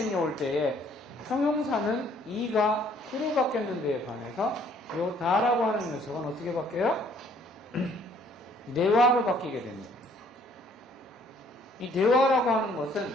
올 때에 형용사는 이가 쿠로 바뀌는 데에 반해서 이 나라고 하는 녀석은 어떻게 바뀌어요? 네와로 바뀌게 됩니다. 이 네와라고 하는 것은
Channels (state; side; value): normal; both; correlation 0.61